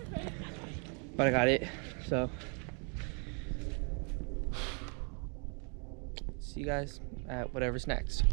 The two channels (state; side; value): quieter; left; 38.5 dB